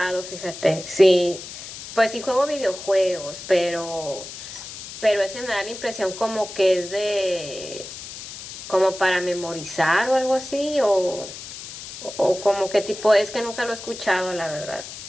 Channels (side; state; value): left; noise; hiss, 12 dB below the sound